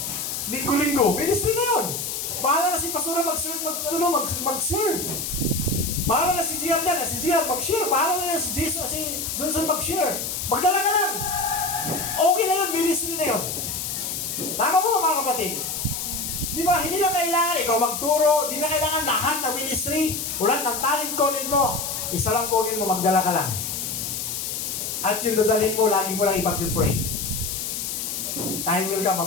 Linggo-linggo. Ministry na yun. Bahala na si Pastora mag-serve. Bahala na si Gian dyan. Si Gian mag-share. Bahala na si Jesus, si Johnson mag-share. Magdala ka lang. Okay na yun. Ministry na yun. Tama po mga kapatid. Di ba? Hindi na kailangan ikaw magturo. Hindi na kailangan lahat ng ministry. Ulat ng talent calling mo. Isa lang calling mo. Magdala ka lang. At yung dadalhin mo, lagi mo lang ipag-pray. Time will ka,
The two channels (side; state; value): left; noise; hiss, 4 dB below the sound